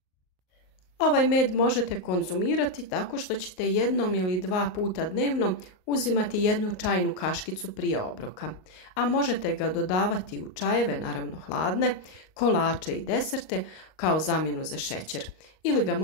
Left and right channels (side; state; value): right; late; 38 ms